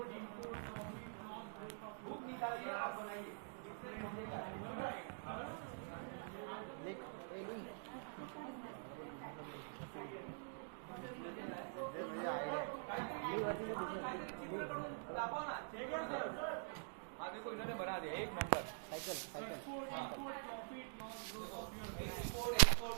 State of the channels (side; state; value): left; silent; digital silence